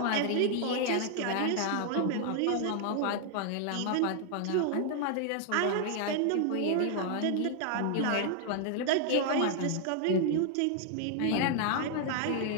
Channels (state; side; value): different; both; correlation 0.00